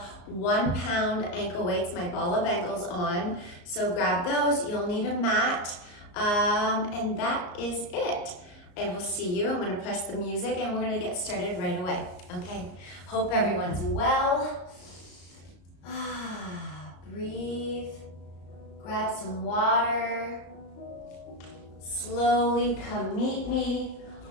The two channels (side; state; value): right; late; 34 ms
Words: 1 pound ankle weights, my ball of ankles on, so grab those. You'll need a mat. And that is it. I will see you. I'm going to press the music and we're going to get started right away. Okay. Hope everyone's well. Breathe. Grab some water. Slowly come meet me